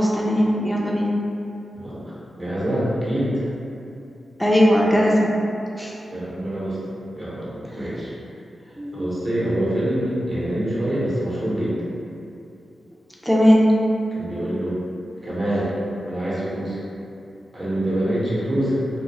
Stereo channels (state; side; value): normal; both; correlation 0.92